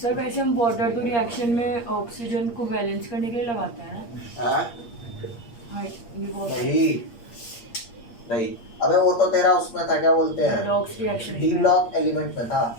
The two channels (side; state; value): right; late; 8.6 ms